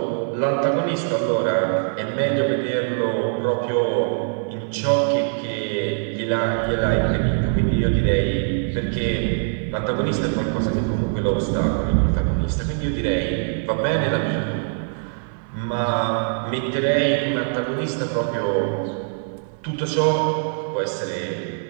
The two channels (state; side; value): silent; left; 56 dB below the other